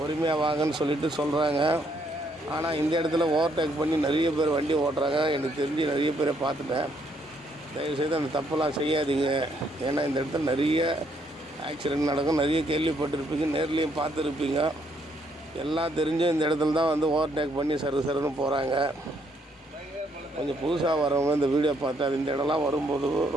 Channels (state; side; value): normal; both; correlation 0.71